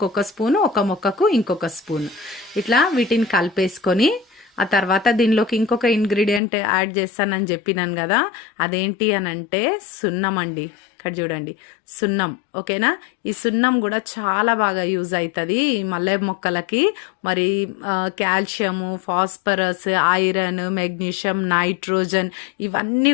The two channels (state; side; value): drops out; right; at 6.4 s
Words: 1 స్పూను, ఒక మొక్కకు ఇంకొక స్పూన్, ఇట్లా వీటిని కలిపేసుకొని ఆ తర్వాత దీనిలోకి ఇంకొక ఇంగ్రీడియంట్ యాడ్ చేస్తానని చెప్పినాను కదా, అదేంటి అని అంటే సున్నం అండి. ఇక్కడ చూడండి, సున్నం. ఓకేనా. ఈ సున్నం కూడా చాలా బాగా యూజ్ అవుతుంది ఈ మల్లె మొక్కలకి. మరి calcium, phosphorus, iron, magnesium, nitrogen ఇవన్నీ